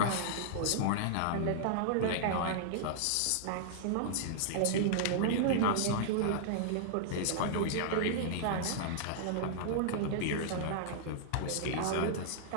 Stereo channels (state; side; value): different; both; correlation -0.01